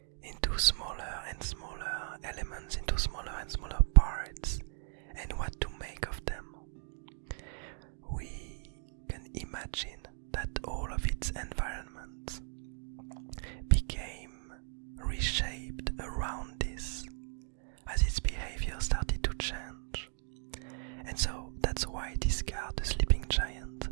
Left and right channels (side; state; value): left; silent; 54 dB below the other